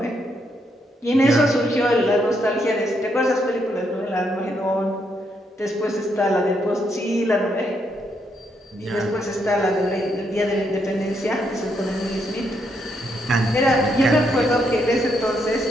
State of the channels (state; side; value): normal; both; correlation 0.77